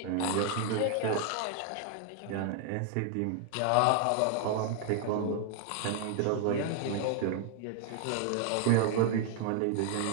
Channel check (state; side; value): different; both; correlation 0.00